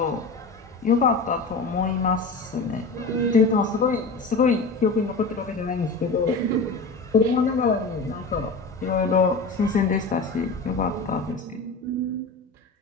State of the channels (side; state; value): right; quieter; 3.7 dB